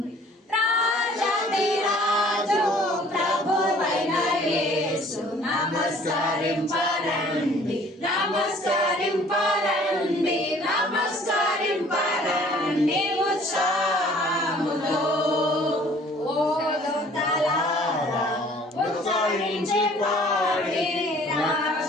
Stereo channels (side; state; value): both; normal; correlation 0.54